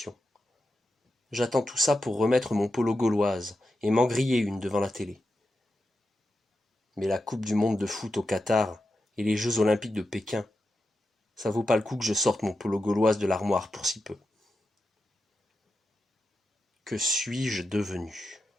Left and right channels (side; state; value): both; normal; correlation 0.89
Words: J'attends tout ça pour remettre mon polo gauloise et m'en griller une devant la télé. Mais la Coupe du monde de foot au Qatar et les Jeux olympiques de Pékin, ça vaut pas le coup que je sorte mon polo gauloise de l'armoire pour si peu. Que suis-je devenu?